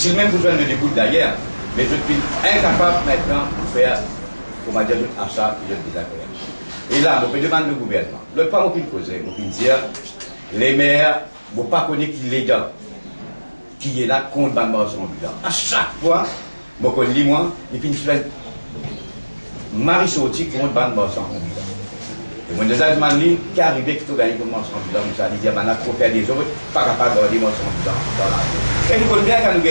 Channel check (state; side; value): inverted; both; correlation -1.00